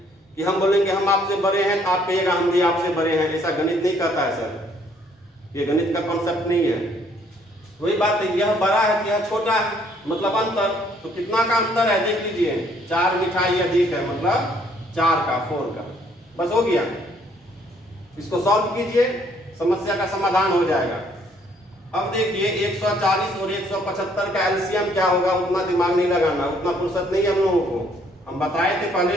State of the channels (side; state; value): both; normal; correlation 0.65